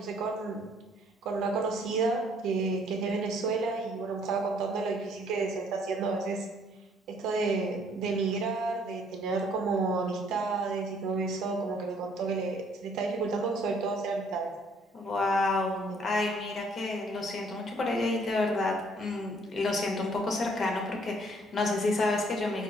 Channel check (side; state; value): both; normal; correlation 0.63